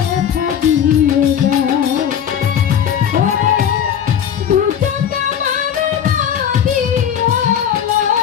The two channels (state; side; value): quieter; right; 8.8 dB